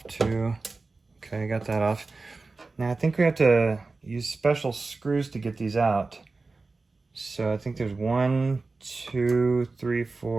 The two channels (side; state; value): left; quieter; 3.7 dB